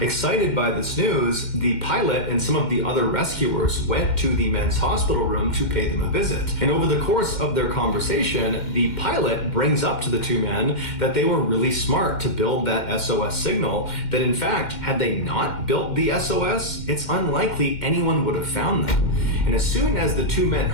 by this news, the pilot and some of the other rescuers went to the men's hospital room to pay them a visit. And over the course of their conversation, the pilot brings up to the two men that they were really smart to build that SOS signal, that in fact, had they not built the SOS, it's unlikely anyone would have found them. And as soon as the two men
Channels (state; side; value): late; right; 2.1 ms